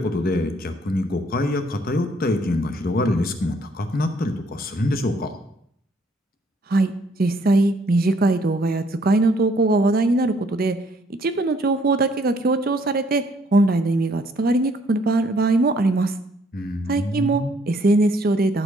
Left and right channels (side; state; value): both; normal; correlation 0.65